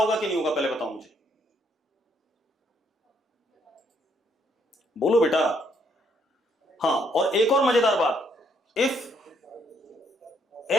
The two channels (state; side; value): normal; both; correlation 0.70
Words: कि नहीं होगा, पहले बताओ मुझे, बोलो बेटा। हाँ, और एक और मजेदार बात, if